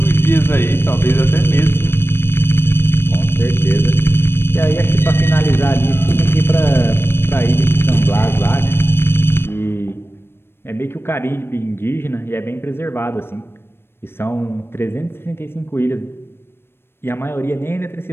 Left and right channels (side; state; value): right; late; 0.11 ms